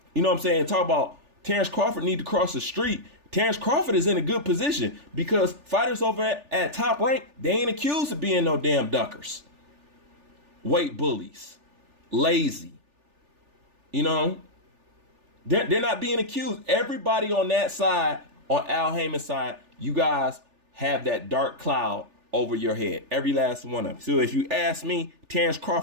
you know what I'm saying? Talk about Terrence Crawford need to cross the street. Terrence Crawford is in a good position because fighters over at Top Rank, they ain't accused of being no damn duckers, weight bullies, lazy. You know, they're not being accused. Everybody on that side, on Al Haymon's side, you guys have that dark cloud over your head. Every last one of them. So if you ask me, Terrence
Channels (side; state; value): left; late; 3.4 ms